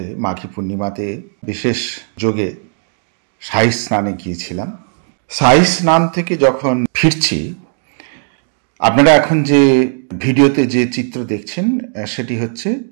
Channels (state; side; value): silent; left; 60 dB below the other